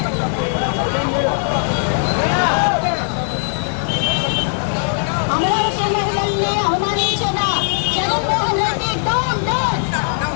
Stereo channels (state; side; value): silent; right; 67 dB below the other